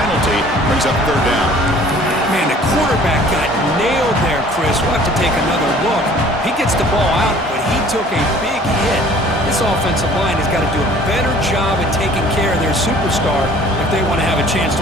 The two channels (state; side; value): normal; both; correlation 0.52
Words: Brings up 3rd down. Man, the quarterback got nailed there, Chris. We'll have to take another look. He gets the ball out, but he took a big hit. This offensive line has got to do a better job at taking care of their superstar if they want to have a chance